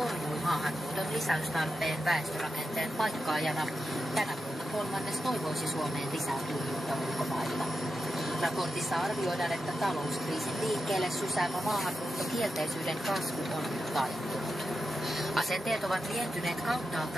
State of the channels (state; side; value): normal; both; correlation 0.89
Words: maahanmuuton lisäystarpeen väestörakenteen paikkaajana. Tänä vuonna kolmannes toivoisi Suomeen lisää tulijoita ulkomailla. Raportissa arvioidaan, että talouskriisin liikkeelle sysäämä maahanmuuttokielteisyyden kasvu on nyt taittunut. Asenteet ovat lientyneet